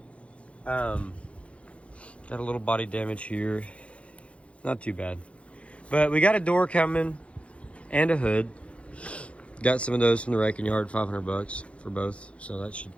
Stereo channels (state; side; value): late; right; 0.061 ms